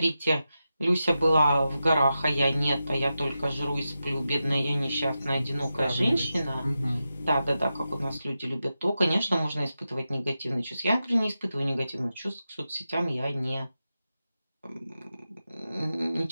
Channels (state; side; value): inverted; both; correlation -0.90